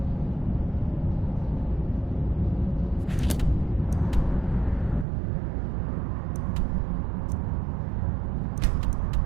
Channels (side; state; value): left; drops out; at 5.1 s